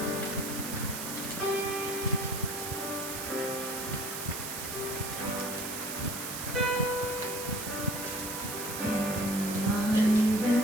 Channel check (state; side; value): noise; right; hiss, 6 dB below the sound